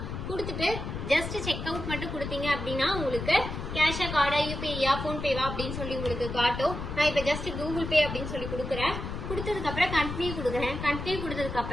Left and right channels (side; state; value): left; noise; rumble, 6 dB below the sound